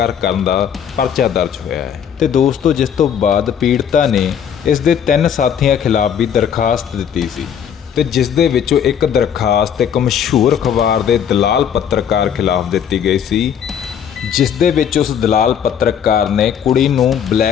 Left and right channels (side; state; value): right; quieter; 8.4 dB